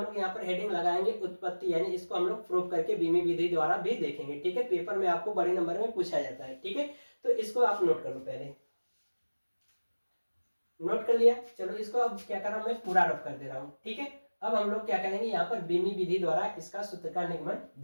यहाँ पर हेडिंग लगाएंगे उत्पत्ति, यानी इसको हम लोग प्रूफ करके बीमीय विधि द्वारा भी देखेंगे। ठीक है, पेपर में आपको बड़े नंबर में पूछा जाता है। ठीक है, तो इसको आप नोट कर लो, पहले नोट कर लिया। चलो इसको अब क्या कर रहा हूं, मैं पूरा रफ कर दे रहा हूं। ठीक है, अब हम लोग क्या करेंगे, यहाँ पर बीमीय विधि द्वारा इसका सूत्र का निगमन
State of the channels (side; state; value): both; inverted; correlation -1.00